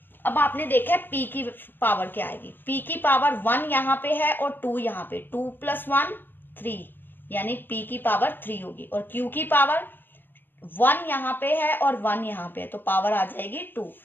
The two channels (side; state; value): right; late; 0.095 ms